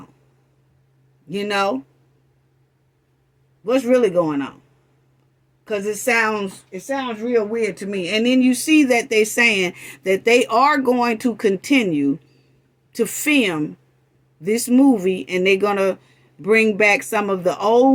You know? What's really going on? Because it sounds real weird to me. And then you see that they're saying that they are going to continue to film this movie, and they're going to bring back some of the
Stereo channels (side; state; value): both; identical; correlation 1.00